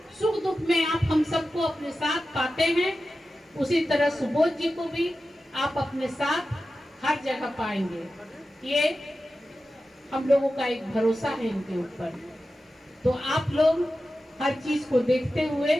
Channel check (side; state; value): both; normal; correlation 0.93